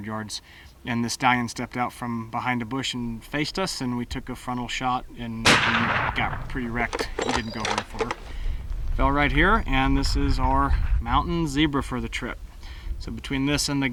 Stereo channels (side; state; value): both; identical; correlation 1.00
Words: yards. And the stallion stepped out from behind a bush and faced us, and we took a frontal shot, and he got pretty wrecked. He didn't go very far. Fell right here, and this is our mountain zebra for the trip. So between this and the